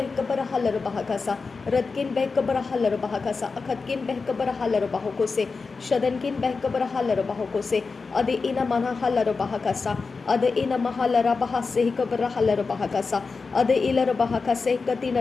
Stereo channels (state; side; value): quieter; right; 4.5 dB